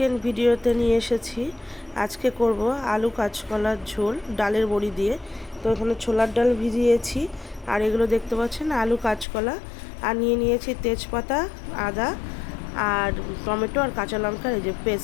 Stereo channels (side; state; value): right; drops out; at 9.2 s